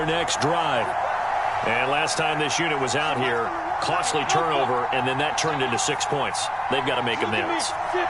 next drive. And last time this unit was out here, costly turnover, and then that turned into 6 points. They've got to make amends.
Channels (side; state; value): both; identical; correlation 1.00